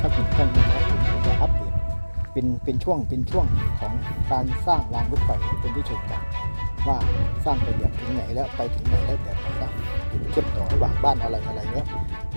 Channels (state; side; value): inverted; both; correlation -1.00